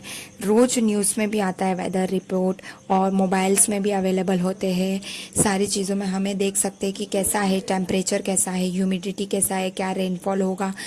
रोज न्यूज़ में भी आता है वेदर रिपोर्ट, और मोबाइल्स में भी अवेलेबल होते हैं। सारी चीज़ों में हमें देख सकते हैं कि कैसा है, टेम्परेचर कैसा है, ह्यूमिडिटी कैसा है, क्या रेनफॉल होगा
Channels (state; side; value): identical; both; correlation 1.00